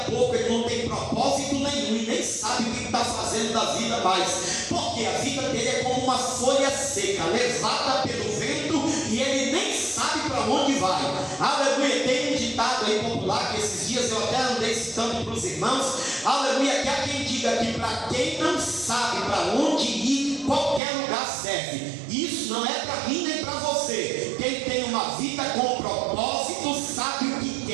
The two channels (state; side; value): drops out; left; at 20.8 s